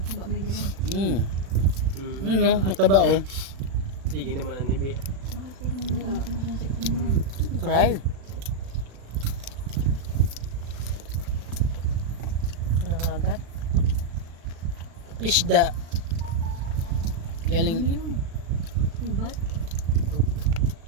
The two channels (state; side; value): late; left; 36 ms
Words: Ba may dagan. No, mataba oh. Sige naman ang nibi. Tingnan mo ang sipin mo. Cry. Nangagat. Pisda. Galing. Ano yun? Ubat?